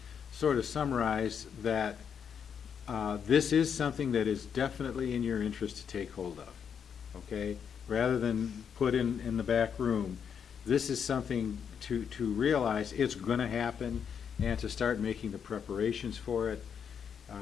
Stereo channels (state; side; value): quieter; right; 7.4 dB